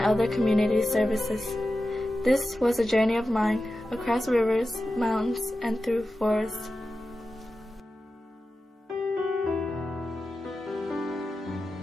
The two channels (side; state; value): both; normal; correlation 0.93